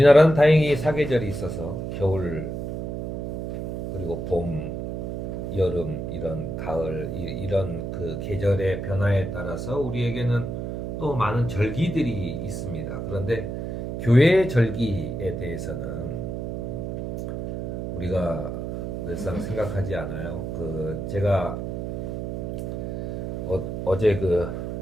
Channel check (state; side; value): noise; right; hum, 4 dB below the sound